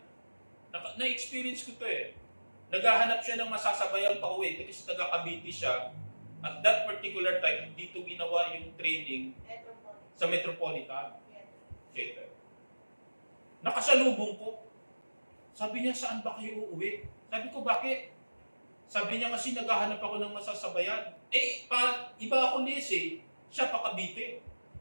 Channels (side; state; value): both; inverted; correlation -1.00